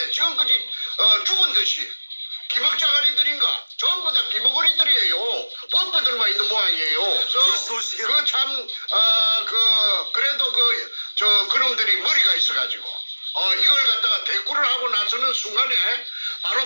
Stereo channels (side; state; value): both; inverted; correlation -1.00